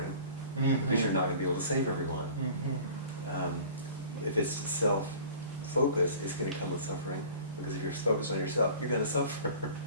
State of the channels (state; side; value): inverted; both; correlation -0.44